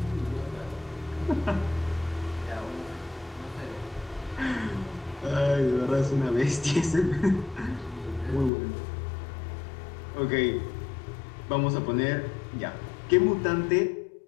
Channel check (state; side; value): drops out; right; at 8.5 s